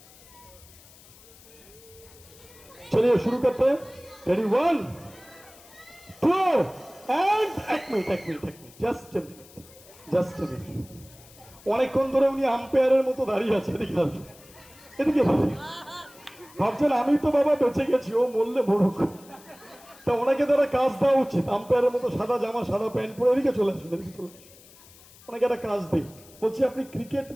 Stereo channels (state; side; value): noise; left; hiss, 23 dB below the sound